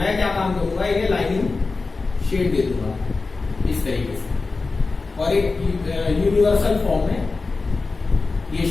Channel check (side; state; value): right; quieter; 3.9 dB